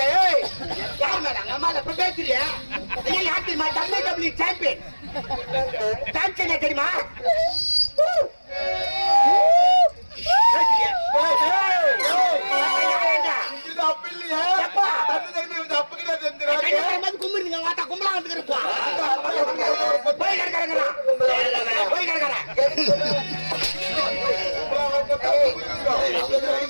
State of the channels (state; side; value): inverted; both; correlation -1.00